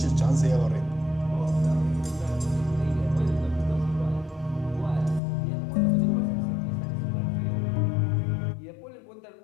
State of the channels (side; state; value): right; drops out; at 5.2 s